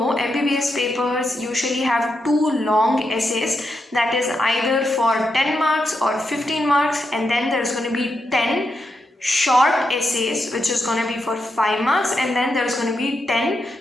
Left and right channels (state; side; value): normal; both; correlation 0.84